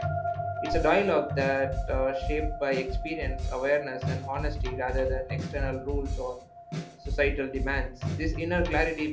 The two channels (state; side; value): identical; both; correlation 1.00